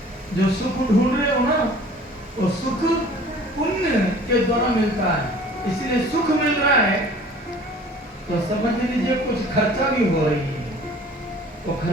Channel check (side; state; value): both; normal; correlation 0.48